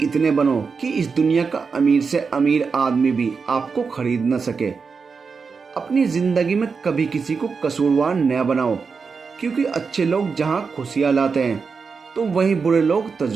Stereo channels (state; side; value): quieter; left; 5.2 dB